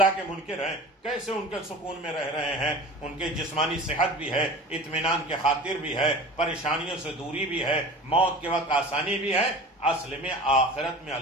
کے منکر ہیں، کیسے ان کے سکون میں رہ رہے ہیں، ان کے جسمانی صحت بھی ہے، اطمینان کے خاطر بھی ہے، پریشانیوں سے دوری بھی ہے، موت کے وقت آسانی بھی ہے۔ اصل میں آخرت میں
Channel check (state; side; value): normal; both; correlation 0.38